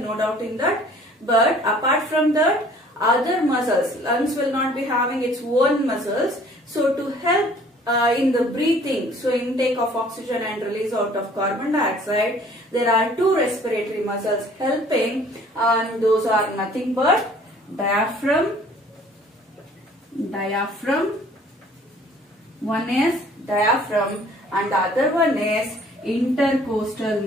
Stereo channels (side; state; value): both; normal; correlation 0.54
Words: no doubt in that. But apart from that, other muscles, lungs will not be having its own muscles. So to help in the breathing, so intake of oxygen and release out of carbon dioxide, there are two respiratory muscles helping, and those are nothing but diaphragm. One is diaphragm and the other one is intercostal